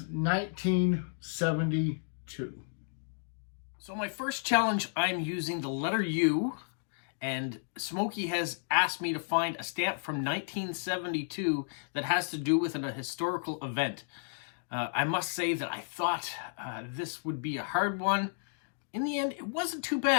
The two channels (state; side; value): silent; right; digital silence